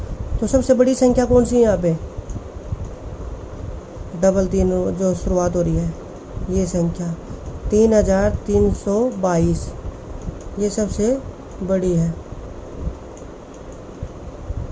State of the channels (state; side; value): identical; both; correlation 1.00